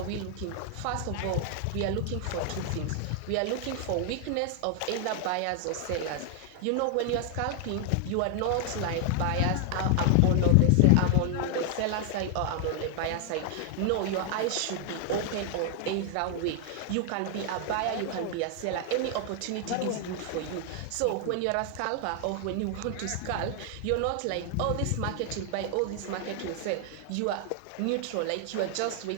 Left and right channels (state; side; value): different; both; correlation 0.00